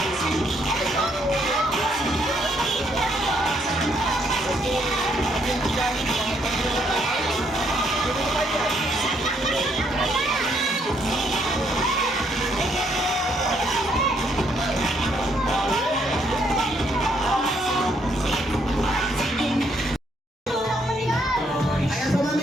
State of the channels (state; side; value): normal; both; correlation 0.71